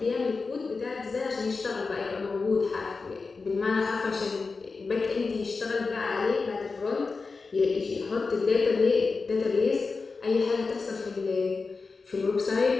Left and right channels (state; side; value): quieter; right; 4.3 dB